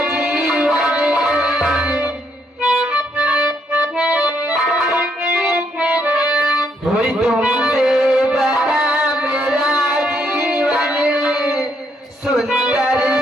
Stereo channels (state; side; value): normal; both; correlation 0.74